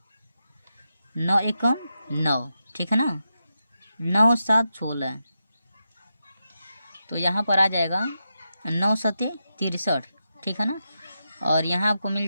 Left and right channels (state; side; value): inverted; both; correlation -0.87